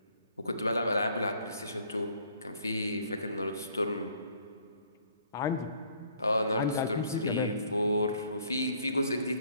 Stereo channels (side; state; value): both; inverted; correlation -0.59